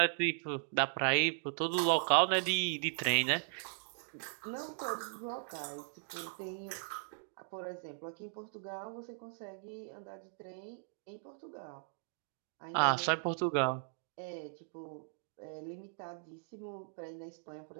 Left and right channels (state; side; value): silent; left; digital silence